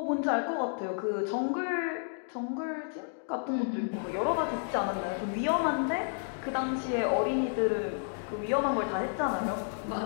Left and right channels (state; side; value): silent; right; digital silence